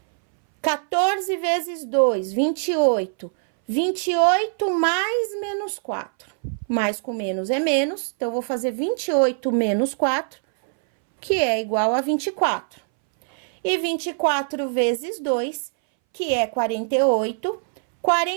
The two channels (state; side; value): silent; left; 62 dB below the other